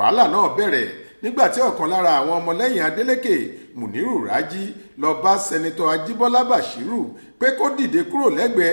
náà bẹ̀rẹ̀ nígbà tí ọ̀kan lára àwọn ọmọlẹ́yìn Adélékè, Muniru Raji, lọ bá sẹ́nitọ́ Ajíbọ́lá Bashiru pé kó dìde kúrò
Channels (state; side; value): inverted; both; correlation -1.00